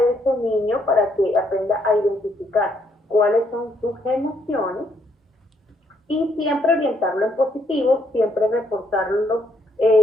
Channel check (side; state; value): both; normal; correlation 0.71